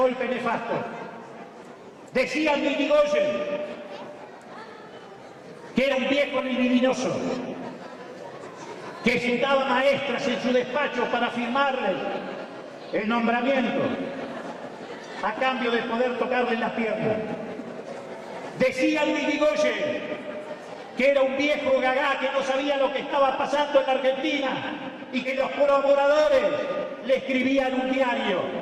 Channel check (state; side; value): identical; both; correlation 1.00